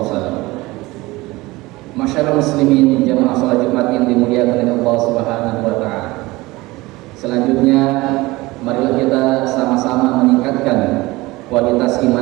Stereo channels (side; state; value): left; quieter; 20.7 dB